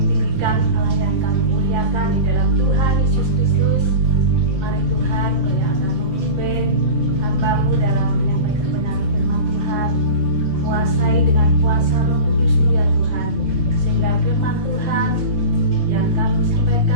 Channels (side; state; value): left; late; 5.9 ms